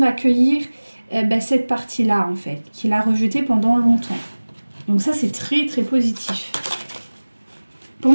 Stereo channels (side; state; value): both; inverted; correlation -1.00